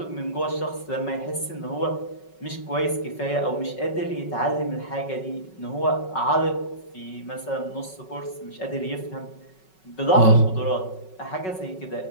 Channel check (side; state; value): right; late; 5.4 ms